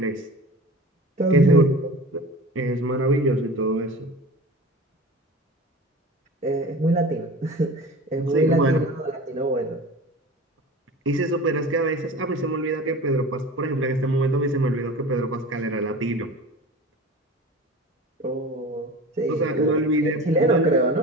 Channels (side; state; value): both; normal; correlation 0.36